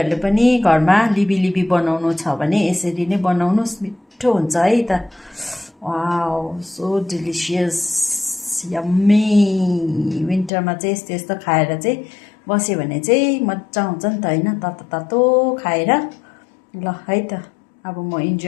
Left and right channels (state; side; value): drops out; right; at 10.5 s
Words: पनि घरमा लिबी लिबी बनाउनु छ भने यसरी नै बनाउनुहोस् मिठो हुन्छ है त वाउ सो डिलिसियस यम्मी विन्टरमा चाहिँ यस्तो यस्तो खाएर चाहिँ बस्यो भने चाहिँ मजा आउँछ नि त होइन तातो तातो खाएर ल है त अब म